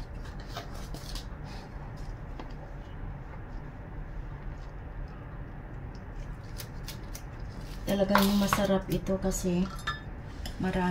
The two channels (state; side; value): identical; both; correlation 1.00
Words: Talagang masarap ito kasi